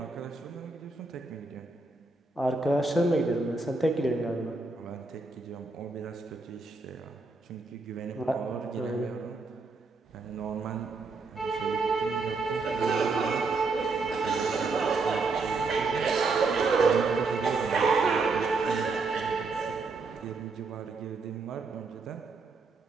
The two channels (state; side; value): quieter; left; 3.9 dB